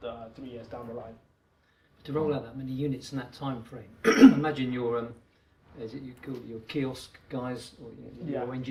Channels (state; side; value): identical; both; correlation 1.00